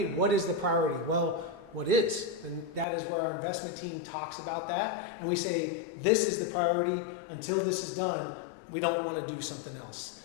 what is the priority? Well, what is? And that is where our investment team talks about that. And we say, this is the priority. Until this is done, we don't want to do something else.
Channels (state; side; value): drops out; right; at 2.9 s